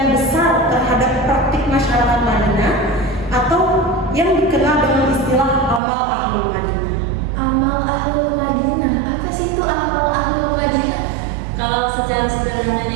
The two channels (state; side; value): drops out; left; at 5.8 s